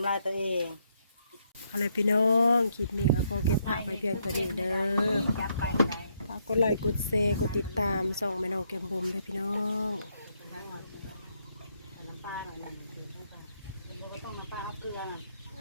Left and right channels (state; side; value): inverted; both; correlation -0.75